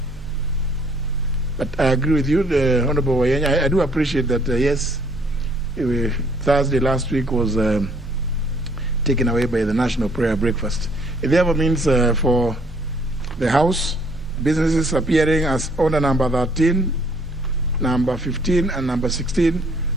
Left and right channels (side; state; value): both; normal; correlation 0.63